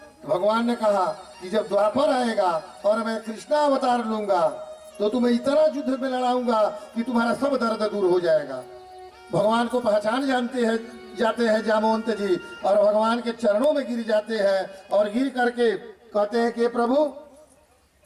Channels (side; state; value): both; identical; correlation 1.00